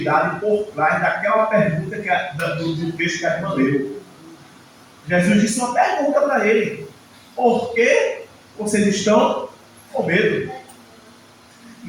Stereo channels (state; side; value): identical; both; correlation 1.00